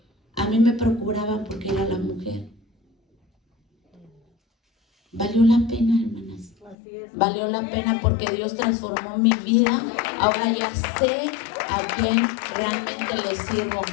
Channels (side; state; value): right; drops out; at 6.8 s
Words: A mí me procuraban porque era la mujer. Valió la pena, hermanas. Valió la pena porque Dios transformó mi vida. Ahora ya sé a quién realmente le sirvo.